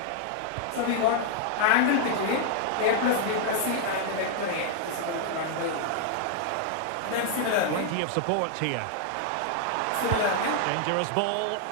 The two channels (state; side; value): different; both; correlation 0.00